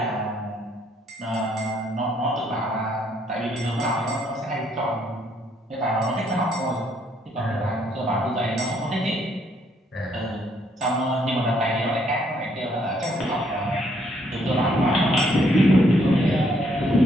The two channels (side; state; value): both; normal; correlation 0.69